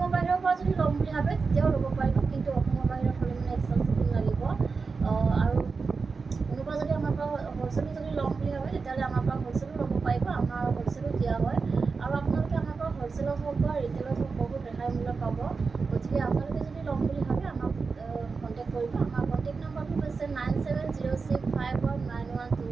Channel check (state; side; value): quieter; left; 4.6 dB